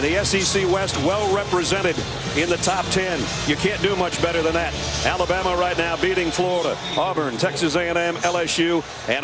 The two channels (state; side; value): identical; both; correlation 1.00